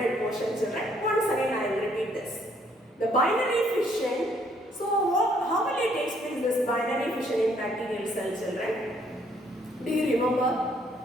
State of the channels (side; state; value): both; normal; correlation 0.66